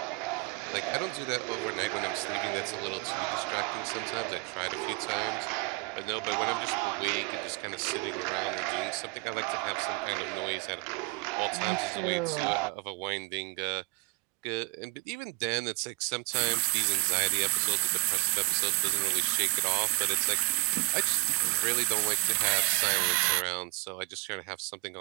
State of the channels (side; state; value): left; quieter; 23.8 dB